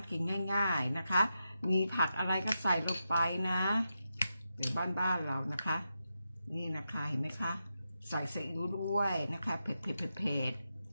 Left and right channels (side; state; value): both; inverted; correlation -0.87